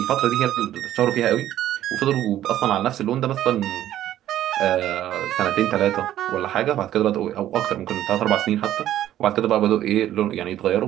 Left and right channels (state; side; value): quieter; left; 12.4 dB